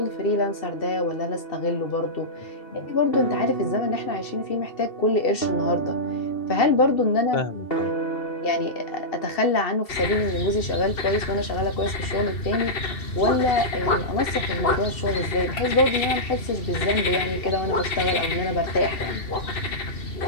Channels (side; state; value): right; late; 2.7 ms